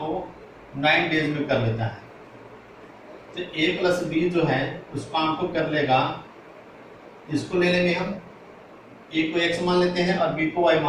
9 डेज में कर लेता है। तो ए प्लस बी जो है उस काम को कर लेगा, इसको ले लेंगे हम, ए को x मान लेते हैं और बी को y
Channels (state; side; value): identical; both; correlation 1.00